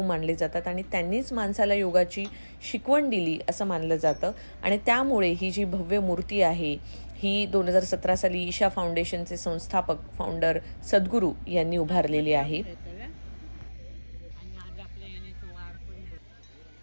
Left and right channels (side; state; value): both; inverted; correlation -1.00